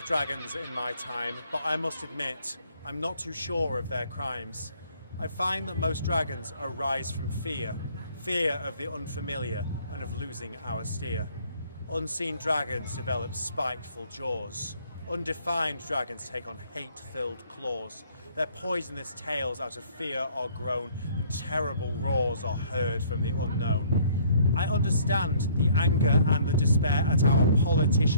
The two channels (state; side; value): inverted; both; correlation -0.59